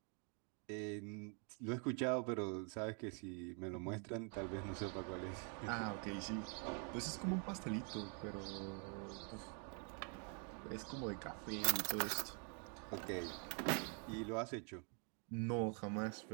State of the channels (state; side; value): quieter; left; 39.2 dB